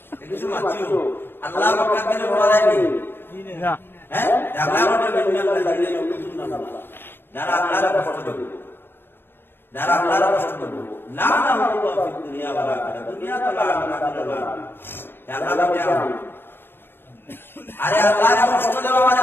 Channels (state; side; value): late; right; 0.10 ms